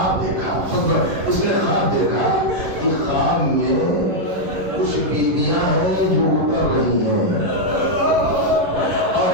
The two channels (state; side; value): late; left; 11 ms